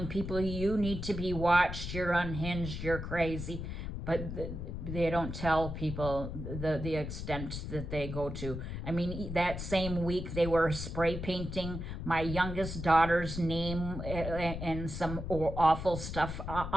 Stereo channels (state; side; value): noise; left; rumble, 6 dB below the sound